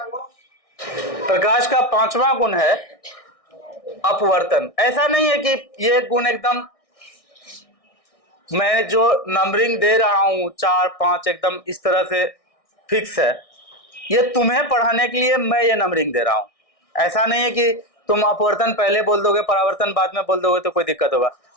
प्रकाश का 5वां गुण है अपवर्तन। ऐसा नहीं है कि ये गुण एकदम मैं जो नंबरिंग दे रहा हूं 4, 5 एकदम इस तरह से फिक्स है, ये तुम्हें पढ़ाने के लिए मैं ये नंबरिंग दे रहा हूं। ऐसा नहीं है कि तुम अपवर्तन पहले बोल दोगे, परावर्तन बाद में बोल दोगे तो कोई दिक्कत होगा।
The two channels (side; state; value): right; late; 1.6 ms